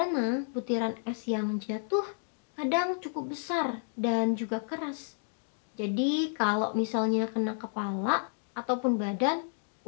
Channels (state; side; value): silent; right; digital silence